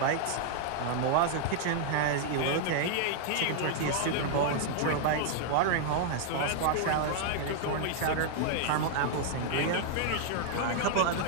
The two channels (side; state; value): both; different; correlation 0.00